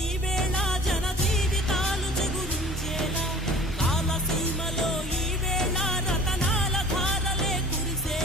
వేళ జన జీవితాలు చెగురించేలా కాలసీమలో ఈ వేళ రతనాల ధారలే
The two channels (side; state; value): both; normal; correlation 0.46